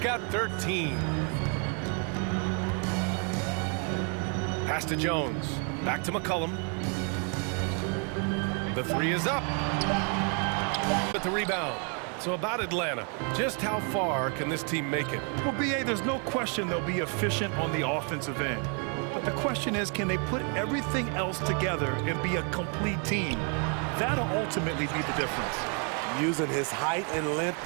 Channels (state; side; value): quieter; left; 38.8 dB